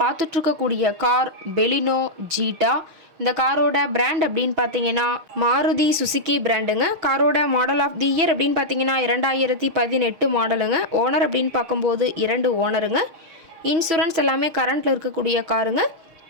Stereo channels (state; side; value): late; left; 6.4 ms